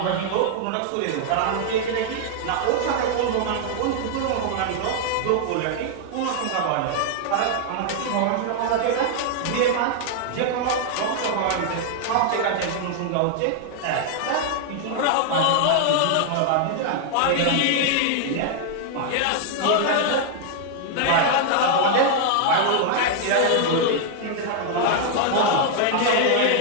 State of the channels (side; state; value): both; different; correlation 0.00